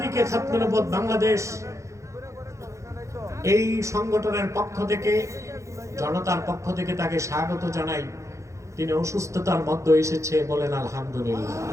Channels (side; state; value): left; late; 0.15 ms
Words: খাতমে নবুওয়াত বাংলাদেশ এই সংগঠনের পক্ষ থেকে, জনতার পক্ষ থেকে তাকে স্বাগত জানাই। তিনি অসুস্থতার মধ্যে এসেছে, বলেন আলহামদুলিল্লাহ।